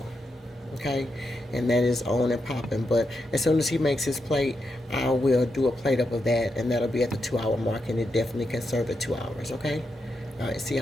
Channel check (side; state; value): both; normal; correlation 0.84